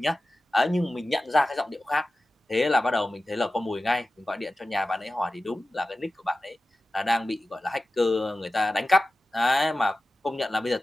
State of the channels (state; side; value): normal; both; correlation 0.94